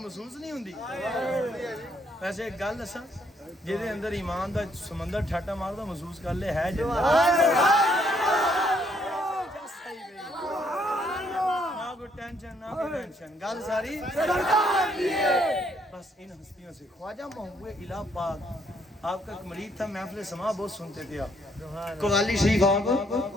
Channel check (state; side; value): normal; both; correlation 0.69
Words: محسوس نہیں ہوندی ویسے ایک گل دساں جہدے اندر ایمان دا سمندر ٹھاٹا ماردا محسوس کر لے ہے جنت ٹینشن نہ ٹینشن گل ساری بس ان ہستیوں سے خواجہ محبوب الہ پاک آپ کا ایک مرید تھا محفل سما بہت سنتے تھے آپ قوالی شریف آپ